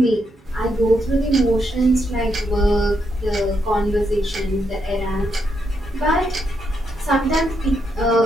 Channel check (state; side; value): normal; both; correlation 0.80